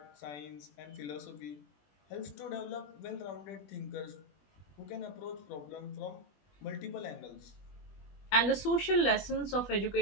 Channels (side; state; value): right; late; 21 ms